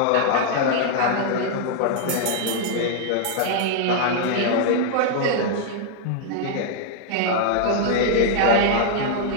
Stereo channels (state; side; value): different; both; correlation -0.01